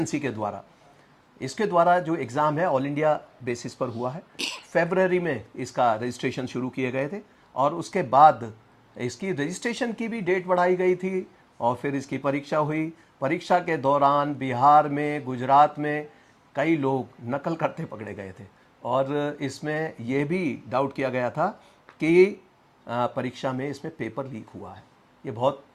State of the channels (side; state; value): both; identical; correlation 1.00